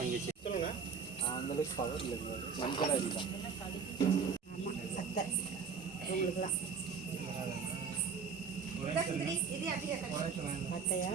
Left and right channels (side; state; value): left; quieter; 6.0 dB